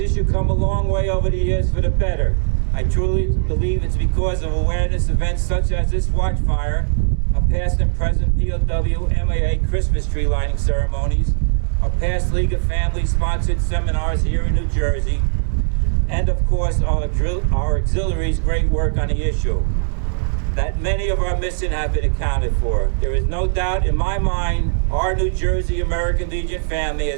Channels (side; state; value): left; silent; 66 dB below the other